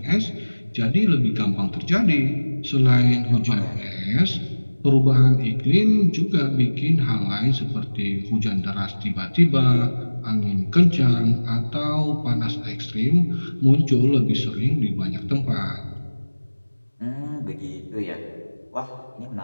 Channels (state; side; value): inverted; both; correlation -1.00